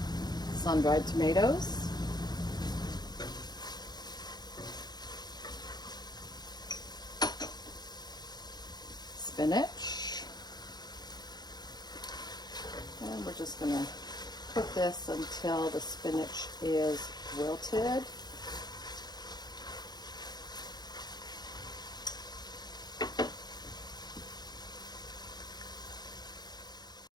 Sun-dried tomatoes. Spinach. And we're just going to cook this until the spinach is wilted.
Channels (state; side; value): late; right; 0.20 ms